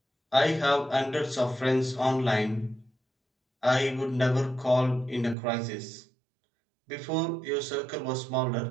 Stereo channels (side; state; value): left; drops out; at 5.4 s